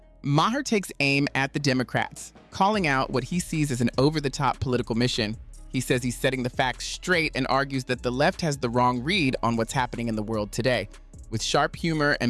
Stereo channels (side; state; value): both; identical; correlation 1.00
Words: Maher takes aim at the Democrats, calling out what he sees as an over-the-top political mission. He says he's setting the facts straight and argues that the left has the wrong read on what's happening in the world today. With sharp humor